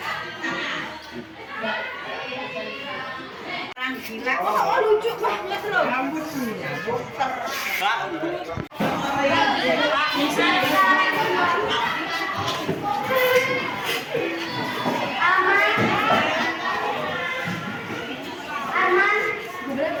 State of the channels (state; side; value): identical; both; correlation 1.00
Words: oh, lucu banget loh. Rambutnya puter.